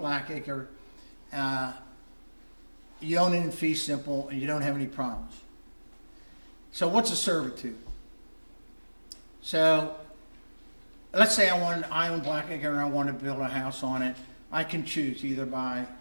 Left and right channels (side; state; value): both; inverted; correlation -1.00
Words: Blackacre, you own it in fee simple and you don't have any problems. So what's a servitude? So let's say I own Blackacre and I want to build a house on it. I can choose either by